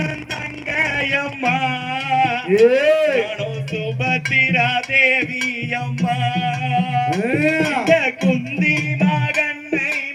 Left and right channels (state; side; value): identical; both; correlation 1.00